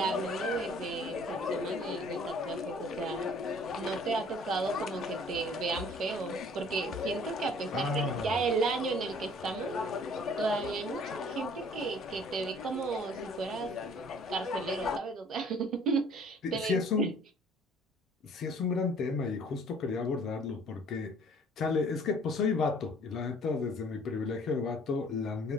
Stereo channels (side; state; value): both; normal; correlation 0.55